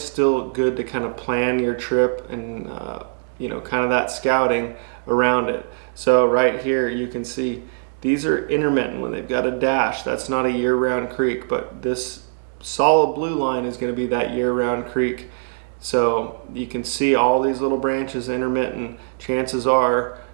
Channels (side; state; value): left; silent; digital silence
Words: good to kind of plan your trip and kind of that scouting around it. So right here you can see these are intermittent when they've got a dash. That's not a year-round creek, but this solid blue line is going to be that year-round creek. So you can see all these little branches intermittent. Chances are